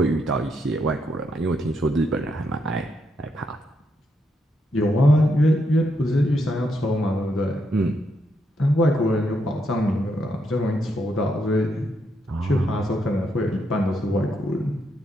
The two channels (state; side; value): normal; both; correlation 0.79